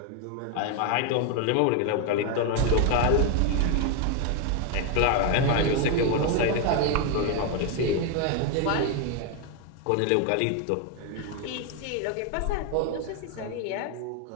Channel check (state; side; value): different; both; correlation 0.01